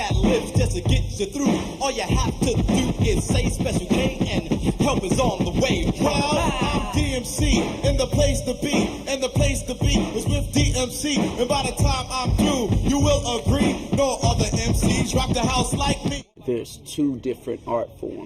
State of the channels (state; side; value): identical; both; correlation 1.00